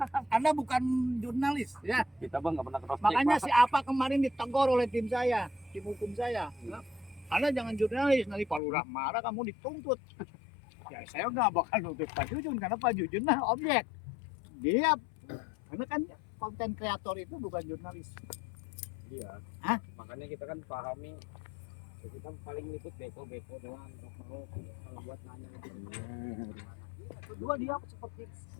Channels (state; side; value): drops out; right; at 8.6 s